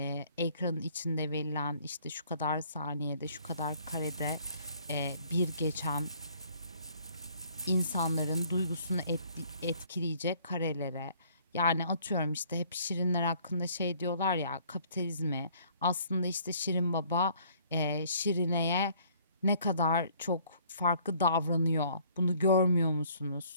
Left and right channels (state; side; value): inverted; both; correlation -0.59